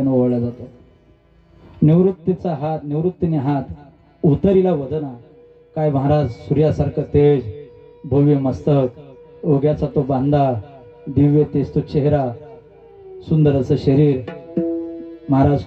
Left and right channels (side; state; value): both; identical; correlation 1.00